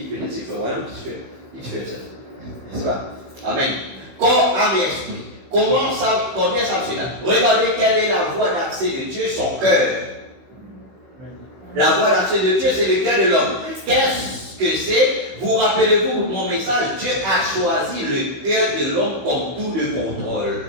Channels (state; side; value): late; left; 16 ms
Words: C'est Florian qui fait ça. N'est-ce pas? Amen. Corps, âme et esprit. Comment ça cela? Regardez quelle est la voie d'accès de Dieu, son cœur. La voie d'accès de Dieu, c'est le cœur de l'homme. Qu'est-ce que c'est? Vous rappelez-vous mon message? Dieu a choisi le cœur de l'homme comme tout de